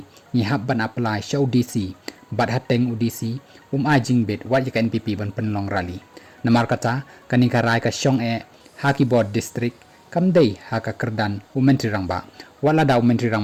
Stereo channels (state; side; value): identical; both; correlation 1.00